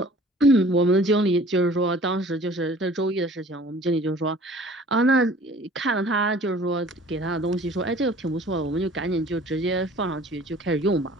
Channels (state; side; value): normal; both; correlation 0.49